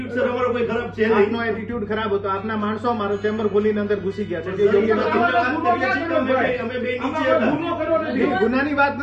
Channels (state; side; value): identical; both; correlation 1.00